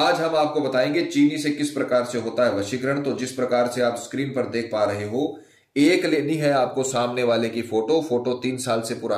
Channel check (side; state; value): both; identical; correlation 1.00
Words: हम आपको बताएंगे चीनी से किस प्रकार से होता है वशीकरण। तो जिस प्रकार से आप स्क्रीन पर देख पा रहे हो, एक लेनी है आपको सामने वाले की फोटो 3 साल से